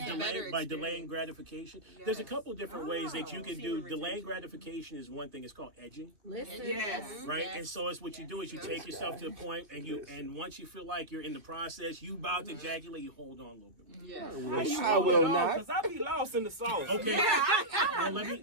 a better By delaying gratification. There's a couple of different ways that you can do. Delaying gratification is one thing. It's called edging. Right? And so it's what you do is you take yourself to the point and once you feel like you're in the process, you about to ejaculate, you hold on a little bit more. I will not. Because I be lost in the sauce. Okay. Well, let me.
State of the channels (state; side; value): late; left; 2.9 ms